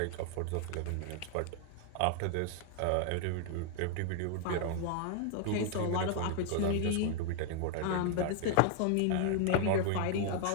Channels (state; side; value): different; both; correlation 0.00